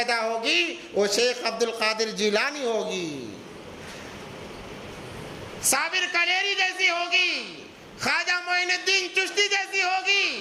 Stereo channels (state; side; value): identical; both; correlation 1.00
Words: ہوگی وہ شیخ عبد القادر جیلانی ہوگی، صابر کلیری جیسی ہوگی، خواجہ معین الدین چشتی جیسی ہوگی۔